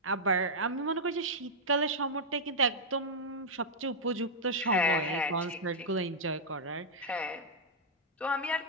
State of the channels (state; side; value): normal; both; correlation -0.04